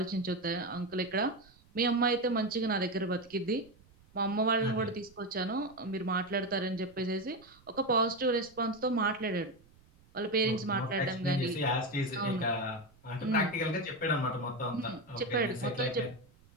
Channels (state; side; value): noise; right; rumble, 28 dB below the sound